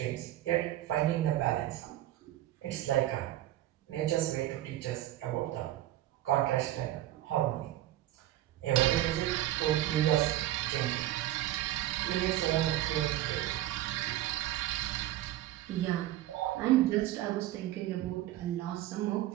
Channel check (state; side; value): quieter; left; 14.4 dB